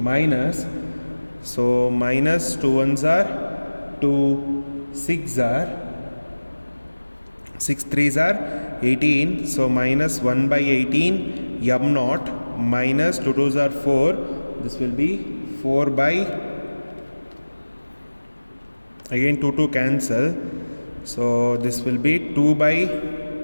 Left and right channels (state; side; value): inverted; both; correlation -1.00